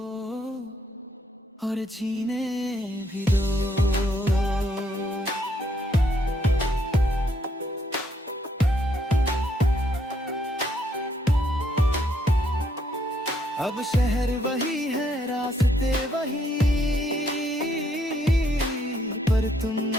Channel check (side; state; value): both; normal; correlation 0.71